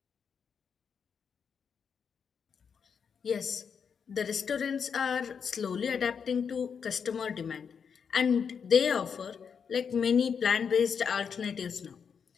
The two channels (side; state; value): right; quieter; 6.7 dB